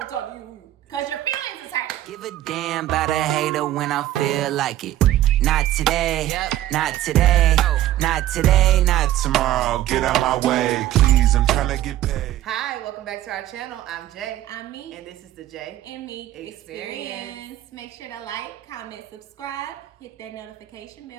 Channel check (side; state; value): left; quieter; 13.8 dB